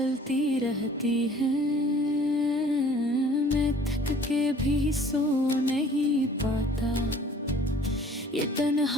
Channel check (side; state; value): both; normal; correlation 0.52